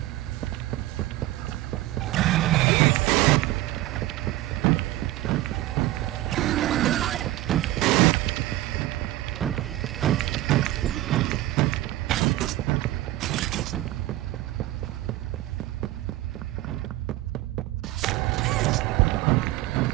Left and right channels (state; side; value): quieter; left; 16.3 dB